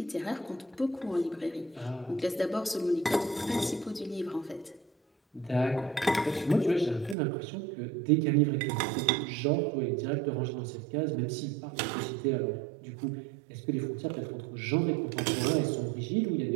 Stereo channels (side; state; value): left; drops out; at 7.2 s